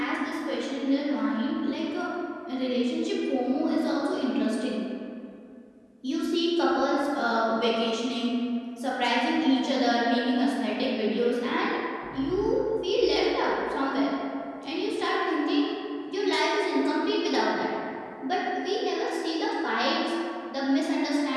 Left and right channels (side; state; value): both; identical; correlation 1.00